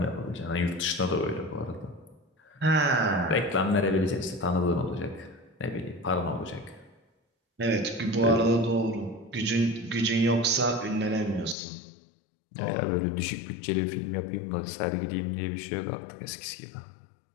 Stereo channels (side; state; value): right; drops out; at 11.6 s